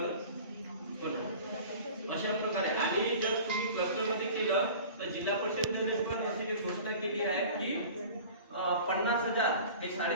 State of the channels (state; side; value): inverted; both; correlation -0.41